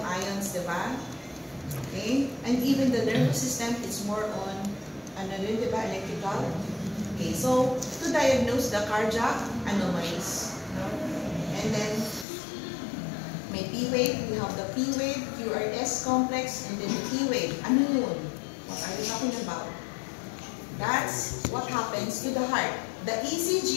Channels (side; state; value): right; drops out; at 12.2 s